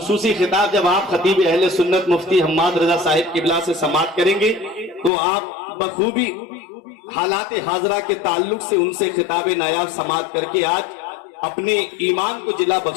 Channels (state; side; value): drops out; right; at 5.1 s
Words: खिताब जब आप खतीब अहले सुन्नत मुफ्ती हम्माद रजा साहिब किबला से समाअत करेंगे तो आप बखूबी हालात हाजरा के ताल्लुक से उनसे खिताब नायाब समाअत करके आज अपने ईमान को जिला